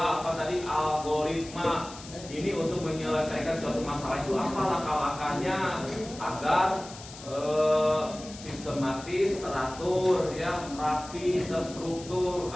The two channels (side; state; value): left; noise; hiss, 16 dB below the sound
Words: apa tadi? Algoritma. Ini untuk menyelesaikan suatu masalah itu apa langkah-langkahnya agar sistematis, teratur, ya, rapi, terstruktur